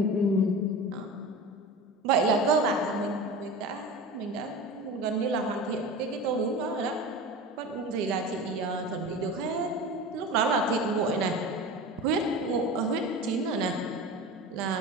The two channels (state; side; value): normal; both; correlation 0.31